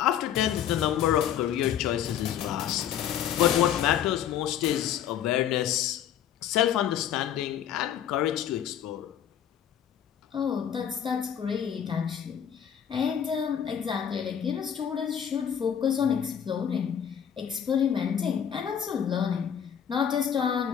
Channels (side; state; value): right; quieter; 9.3 dB